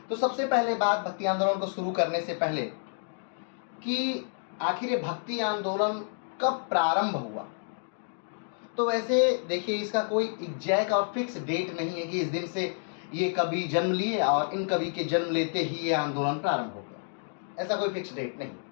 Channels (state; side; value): silent; right; digital silence